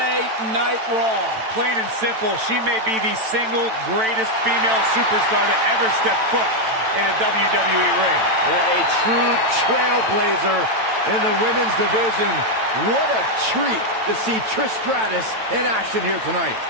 Night Raw. Plain and simple, she may be the single greatest female superstar to ever step foot in a WWE ring. A true trailblazer in the women's division. What a treat to see Trish Stratus in action here tonight.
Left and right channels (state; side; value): late; left; 9.0 ms